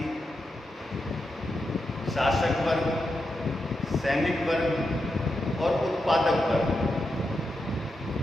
शासक वर्ग, सैनिक वर्ग और उत्पादक वर्ग।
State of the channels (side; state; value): both; normal; correlation 0.87